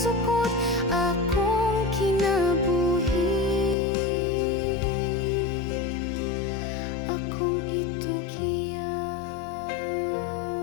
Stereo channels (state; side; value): drops out; right; at 3.8 s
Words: akong kinabuhi, akong itugyan.